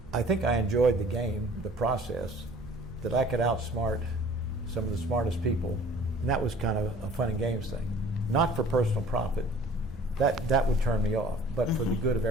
I think I enjoyed the game, the process, that I could outsmart some of the smartest people, and that was kind of a fun and games thing. Not for personal profit, that would turn me off, but for the good of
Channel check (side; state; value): both; normal; correlation 0.50